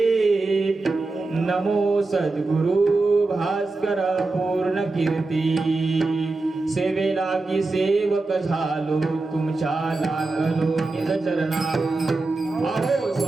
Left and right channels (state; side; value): quieter; left; 3.4 dB